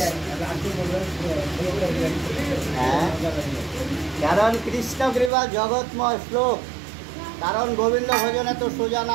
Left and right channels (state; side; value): drops out; left; at 5.3 s